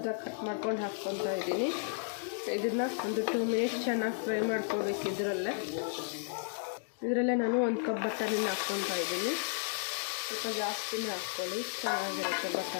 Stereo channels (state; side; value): silent; right; digital silence